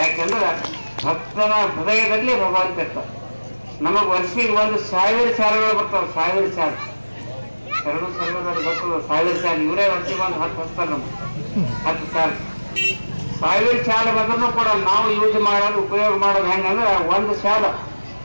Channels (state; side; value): inverted; both; correlation -1.00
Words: ಭಕ್ತನ ಹೃದಯದಲ್ಲಿ ಭಗವಂತ ಇರ್ತಾರೆ. ನಮಗ್ ವರ್ಷಿಗೆ 1,000 ಶಾಲೆಗಳು ಬರ್ತಾವೆ. 1000 ಶಾಲೆ ಎರಡು ಸರ್ವದಲ್ಲಿ ಬರ್ತದೆ. 1000 ಶಾಲೆ ಇವರೇ ವರ್ಷಿಗೆ 10 ಹಚ್ತಾರೆ. ನಮ್ಗೆ 10 ಶಾಲೆ 1000 ಶಾಲೆ ಬಂದ್ರೂ ಕೂಡ ನಾವು ಯೂಸ್ ಮಾಡೋದು ಉಪಯೋಗ ಮಾಡೋದು ಹೆಂಗಂದ್ರೆ ಒಂದು ಶಾಲೆ